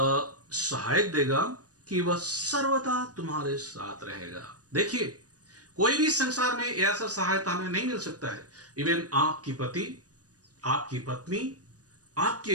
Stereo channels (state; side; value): late; left; 0.68 ms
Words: सहायक देगा कि वह सर्वदा तुम्हारे साथ रहेगा। देखिए, कोई भी संसार में ऐसा सहायता हमें नहीं मिल सकता है। इवन आपकी पति, आपकी पत्नी,